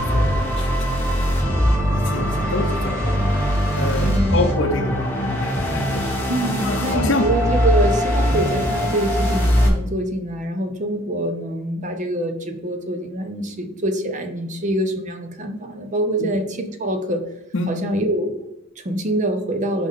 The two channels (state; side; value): normal; both; correlation 0.60